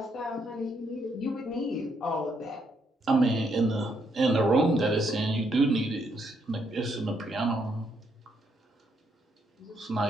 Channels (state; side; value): normal; both; correlation 0.75